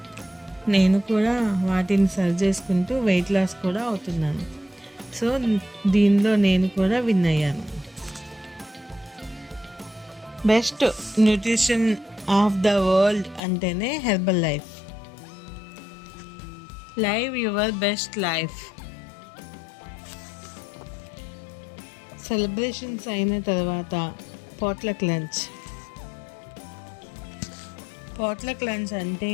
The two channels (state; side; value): drops out; right; at 13.4 s